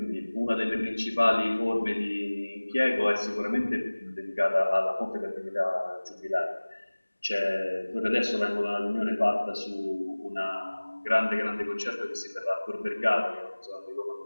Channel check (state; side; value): inverted; both; correlation -1.00